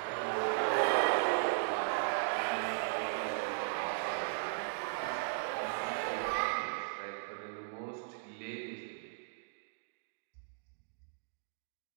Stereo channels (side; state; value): left; silent; digital silence